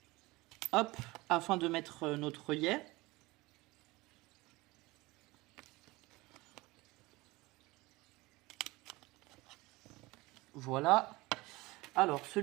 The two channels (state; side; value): quieter; left; 21.5 dB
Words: hop, afin de mettre notre œillet. Voilà. Alors,